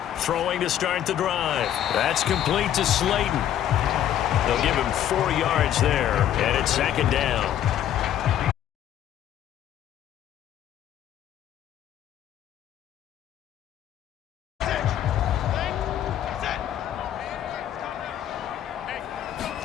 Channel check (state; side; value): quieter; right; 11.0 dB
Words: throwing to start the drive. That's complete to Slayton. They'll give him 4 yards there, and it's 2nd down.